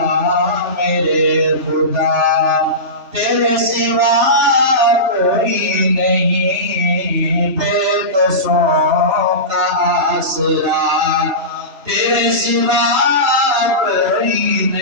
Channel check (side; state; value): left; late; 3.0 ms